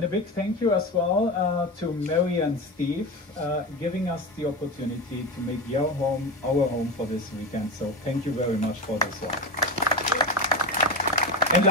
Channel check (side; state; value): both; normal; correlation 0.21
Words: a big thank you as well to Mary and Steve, giving us the opportunity to make your home our home for this weekend. So, thank you very much for this one. And